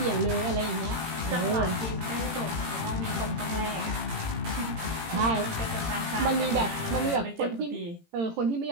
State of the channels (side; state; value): left; late; 18 ms